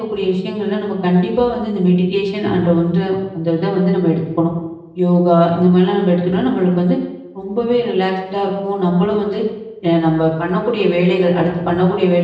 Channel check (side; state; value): both; identical; correlation 1.00